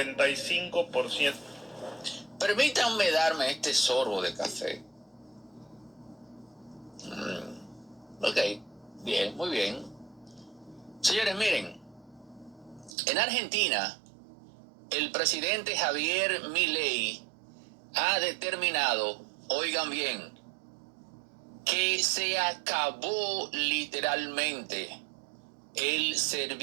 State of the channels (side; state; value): left; drops out; at 13.0 s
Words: Permítanme darme este sorbo de café. Ok, bien, muy bien. Señores, miren, en Argentina, el presidente Javier Milei ha determinado, oigan bien, que se acabó literalmente el